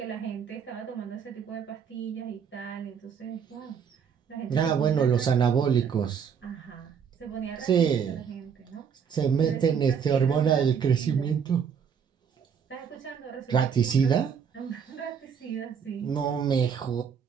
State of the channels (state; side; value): quieter; left; 7.0 dB